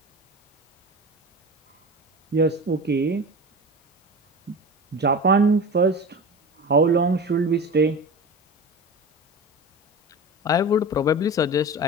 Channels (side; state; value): both; normal; correlation 0.30